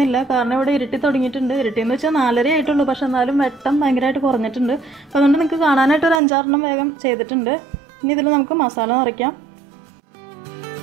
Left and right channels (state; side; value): drops out; left; at 6.2 s